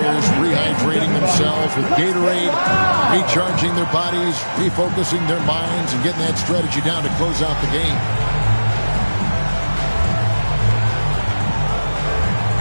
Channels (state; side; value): inverted; both; correlation -1.00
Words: rehydrating themselves with Gatorade, recharging their bodies, refocusing their minds, and getting that strategy down to close out the game.